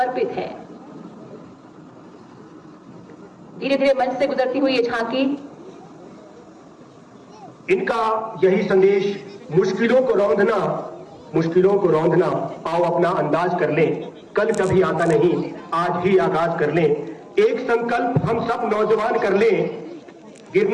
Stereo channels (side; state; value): both; identical; correlation 1.00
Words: है। धीरे धीरे मंच से गुजरती हुई ये झांकी, इनका यही संदेश, मुश्किलों को रौंदना, आओ अपना अंदाज कर लें, कल कभी आता नहीं, आज ही आगाज कर लें। एक संकल्प हम सब नौजवान कर लें,